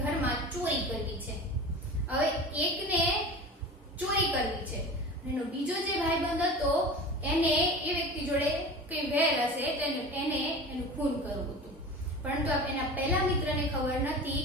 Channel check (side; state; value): both; normal; correlation 0.34